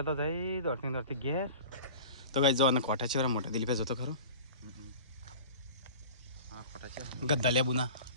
તો થઈ દોડતી ઘેર તો ગાય જો અને કોઠા છે મોટા દિલીપે જોતો ખરો ગદ્દા લેબુ ના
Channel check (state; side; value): inverted; both; correlation -0.39